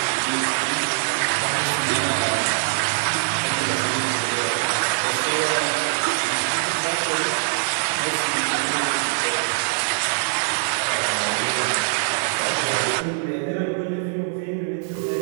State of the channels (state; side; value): silent; left; digital silence